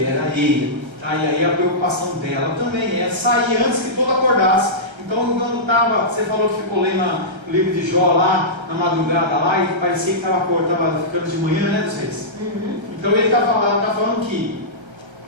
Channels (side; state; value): left; late; 1.3 ms